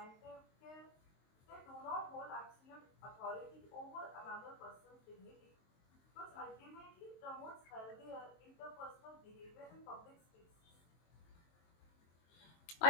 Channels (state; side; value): late; right; 23 ms